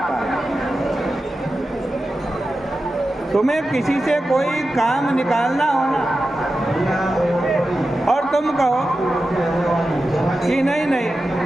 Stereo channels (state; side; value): normal; both; correlation 0.92